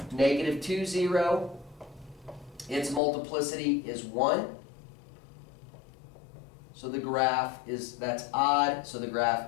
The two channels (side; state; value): right; drops out; at 3.0 s